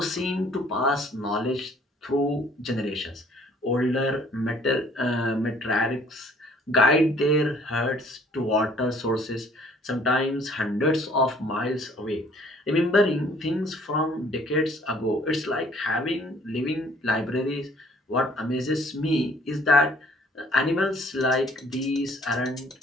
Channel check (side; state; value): both; normal; correlation 0.58